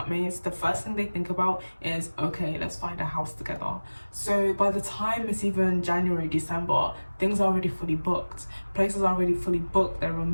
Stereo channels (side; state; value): both; inverted; correlation -1.00